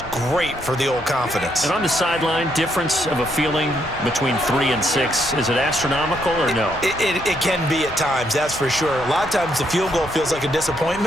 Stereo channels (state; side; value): normal; both; correlation 0.75